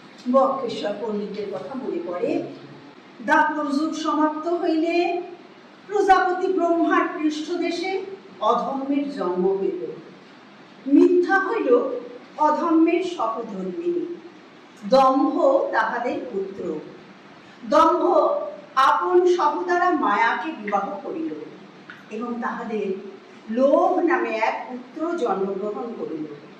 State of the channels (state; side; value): identical; both; correlation 1.00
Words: বক্রেশ্বর পণ্ডিতের কথা মনে পড়ে। দাপর যুগ সমাপ্ত হইলে প্রজাপতি ব্রহ্মার পৃষ্ঠদেশে অধর্মের জন্ম হইল। মিথ্যা হইল অধর্মের সহধর্মিণী, দম্ভ তাহাদের পুত্র। দম্ভ আপন সহদারা মায়াকে বিবাহ করিল এবং তাহাদের লোভ নামে এক পুত্র জন্মগ্রহণ করিল।